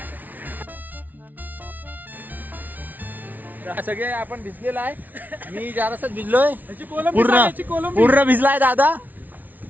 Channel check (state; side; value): late; left; 0.080 ms